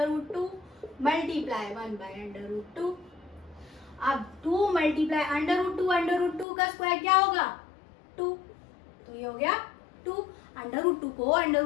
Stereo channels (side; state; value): right; drops out; at 6.5 s